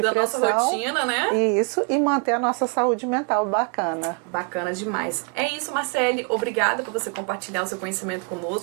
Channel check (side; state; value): left; quieter; 35.5 dB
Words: pressão. Da nossa rotina, né? Isso, e manter a nossa saúde mental bacana. Bacana demais. É isso, Marcele. Obrigada por você compartilhar o seu conhecimento